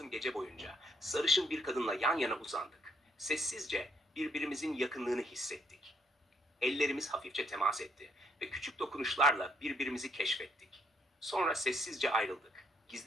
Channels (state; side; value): normal; both; correlation 0.71